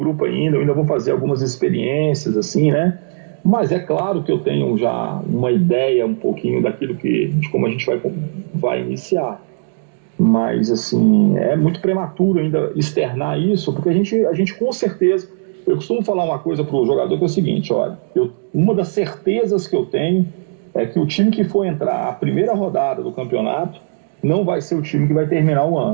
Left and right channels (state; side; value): silent; left; digital silence